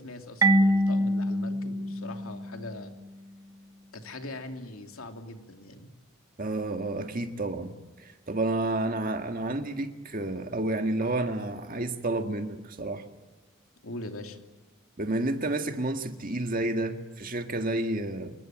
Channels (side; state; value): both; normal; correlation 0.49